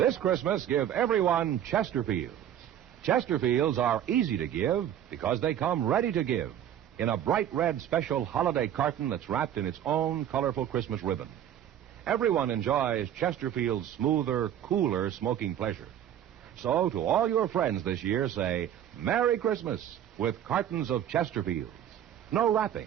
Christmas, give everyone Chesterfields. Chesterfields are easy to give because they come ready to give in a bright red special holiday carton that's wrapped in its own colorful Christmas ribbon. Everyone enjoys Chesterfield's smoother, cooler smoking pleasure. So, to all your friends this year, say, Merry Christmas with cartons of Chesterfields. No wrapping,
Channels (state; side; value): quieter; left; 10.5 dB